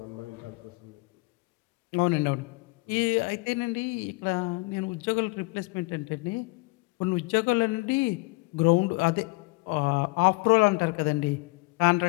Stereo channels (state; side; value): quieter; right; 26.0 dB